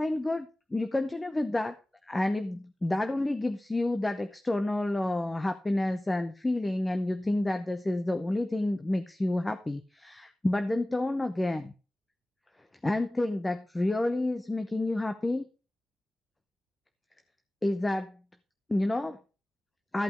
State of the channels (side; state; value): both; normal; correlation 0.98